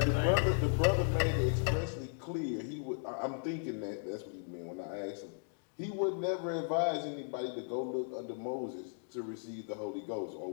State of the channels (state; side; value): silent; right; digital silence